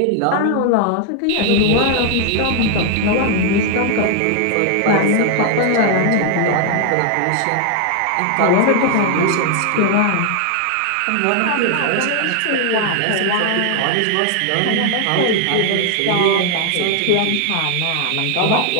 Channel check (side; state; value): both; different; correlation 0.00